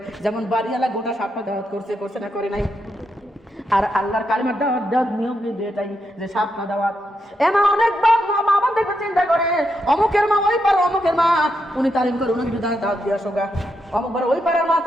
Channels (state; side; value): normal; both; correlation 0.82